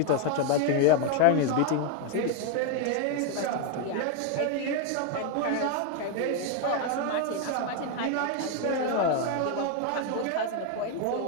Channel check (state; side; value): different; both; correlation 0.01